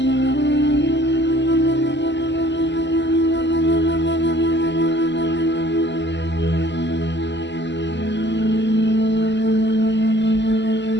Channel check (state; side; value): late; right; 0.51 ms